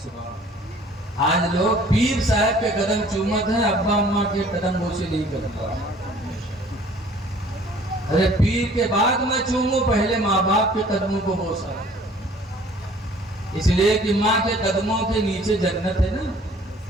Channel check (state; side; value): normal; both; correlation 0.53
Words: سبحان اللہ۔ آج لوگ پیر صاحب کے قدم چومت ہیں، ابا اماں کے قدم بوسے نہیں کرتا۔ ارے پیر کے بعد میں چوموں، پہلے ماں باپ کے قدموں کو بوسا، اس لیے کہ ماں کے قدموں کے نیچے جنت ہے نا۔